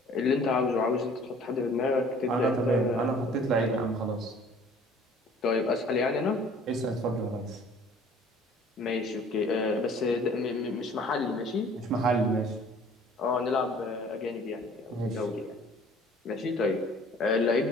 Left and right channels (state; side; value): normal; both; correlation 0.52